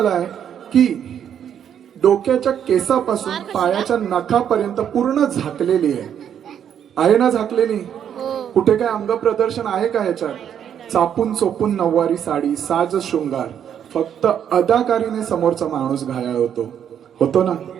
आहे की डोक्याच्या केसापासून पायाच्या नखापर्यंत पूर्ण झाकलेली आहे ना? झाकलेली? कुठे काय अंग प्रदर्शन आहे का याच्यात? चापून चोपून नऊवारी साडी, साज शृंगार, फक्त अदाकारीने समोरचा माणूस घायाळ होतो ना?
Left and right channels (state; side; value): quieter; left; 9.0 dB